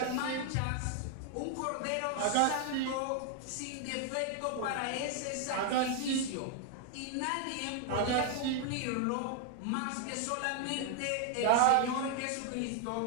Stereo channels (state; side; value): different; both; correlation 0.00